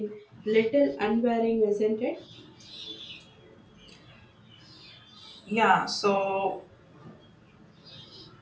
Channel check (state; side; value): identical; both; correlation 1.00